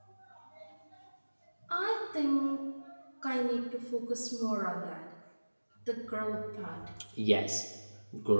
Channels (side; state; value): both; inverted; correlation -1.00